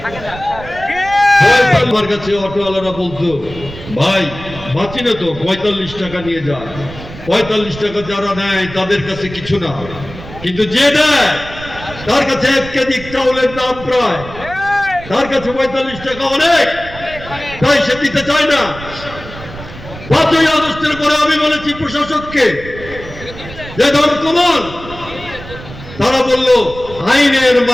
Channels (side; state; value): right; noise; rumble, 14 dB below the sound